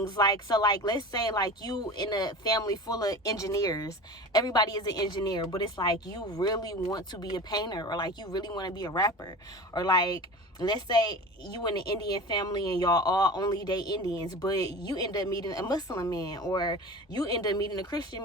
Like so like let's say like you in a family full of engineers, everybody is an engineer, but it's like you really want to be a painter, or like you really want to be a rapper, or like let's say you in an Indian family and y'all all only date Indians, but you end up meeting a Muslim man, or you end up meeting a Christian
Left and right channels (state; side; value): normal; both; correlation 0.34